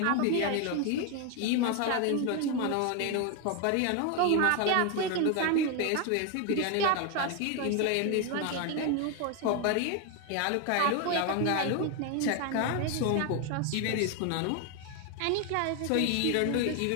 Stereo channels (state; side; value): different; both; correlation 0.01